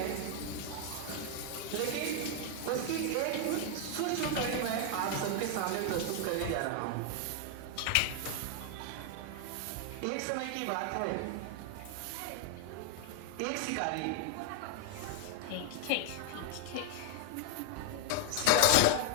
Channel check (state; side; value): different; both; correlation 0.00